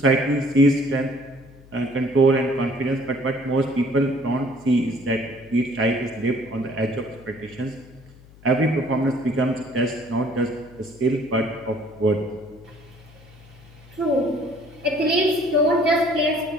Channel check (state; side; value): noise; left; hum, 23 dB below the sound